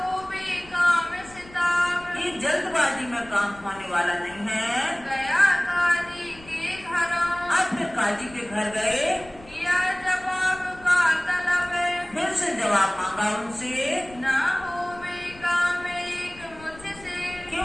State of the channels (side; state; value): left; noise; rumble, 21 dB below the sound